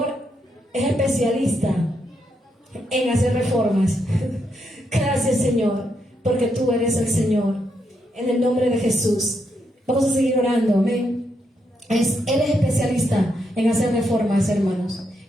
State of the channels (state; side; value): normal; both; correlation 0.80